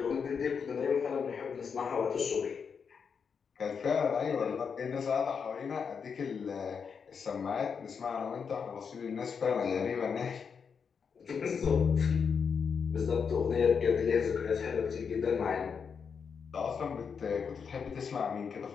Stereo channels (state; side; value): quieter; right; 6.3 dB